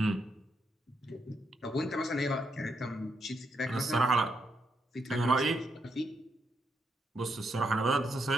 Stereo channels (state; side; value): normal; both; correlation 0.79